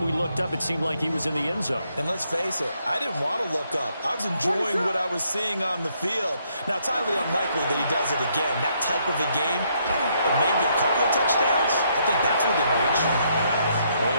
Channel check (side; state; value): both; inverted; correlation -0.73